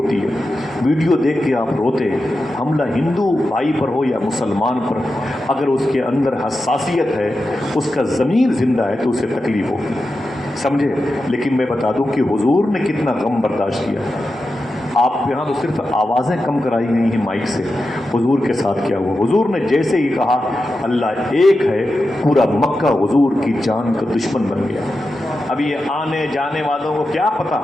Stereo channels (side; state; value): both; normal; correlation 0.90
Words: ہے، ویڈیو دیکھ کے آپ روتے، حملہ ہندو بھائی پر ہو یا مسلمان پر، اگر اس کے اندر حساسیت ہے، اس کا ضمیر زندہ ہے تو اسے تکلیف ہوگی، سمجھے؟ لیکن میں بتا دوں کہ حضور نے کتنا غم برداشت کیا۔ آپ یہاں تو صرف آوازیں کم کرائی گئی ہیں مائک سے، حضور کے ساتھ کیا ہوا؟ حضور نے جیسے ہی کہا اللہ ایک ہے، پورا مکہ حضور کی جان کا دشمن بن گیا۔ ابھی یہ آنے جانے والوں کو کیا پتا،